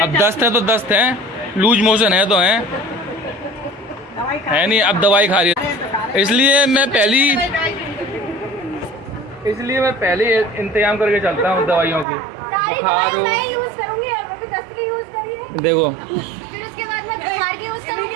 अब दस्त है तो दस्त है, लूज मोशन है तो है नहीं। अब दवाई खा रही है, इसलिए मैं पहले इंतजाम करके चलता हूँ दवाइयों की। बुखार हो, देखो फिर उसके बाद मैं बुखार की यूज करूंगी।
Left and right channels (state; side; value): drops out; left; at 12.1 s